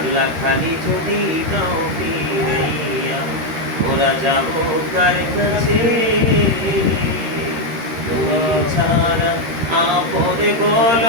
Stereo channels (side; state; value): left; late; 13 ms